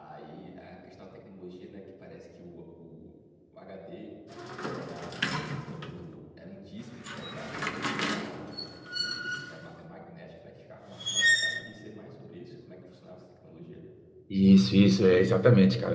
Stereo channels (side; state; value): both; identical; correlation 1.00